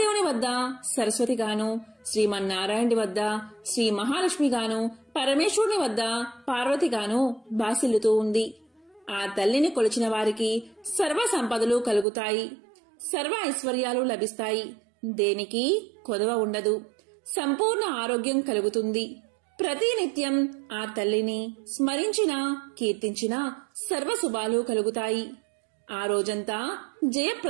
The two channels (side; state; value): left; drops out; at 12.1 s